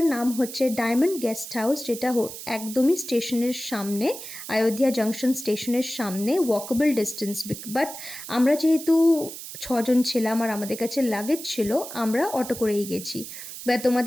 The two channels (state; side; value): noise; right; hiss, 11 dB below the sound